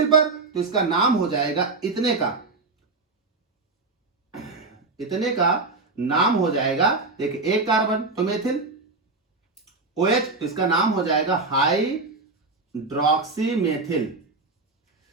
पर, तो इसका नाम हो जाएगा इतने का, इतने का नाम हो जाएगा, देखिए एक कार्बन तो मेथिल, OH तो इसका नाम हो जाएगा हाइड्रोक्सी मेथिल।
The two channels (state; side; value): quieter; left; 3.7 dB